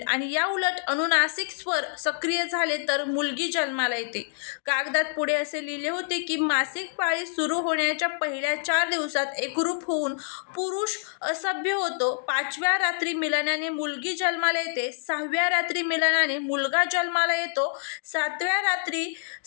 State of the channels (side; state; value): right; silent; digital silence